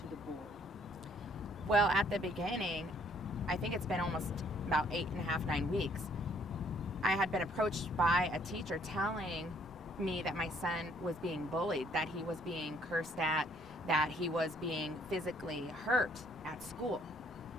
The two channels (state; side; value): normal; both; correlation 0.64